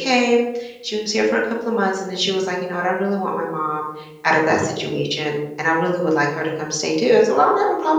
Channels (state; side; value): identical; both; correlation 1.00